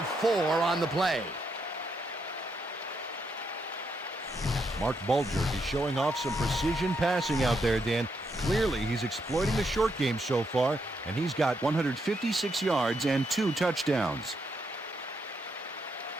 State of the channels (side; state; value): both; normal; correlation 0.79